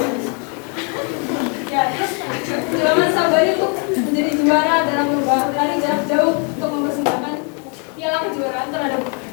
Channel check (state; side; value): quieter; right; 37.4 dB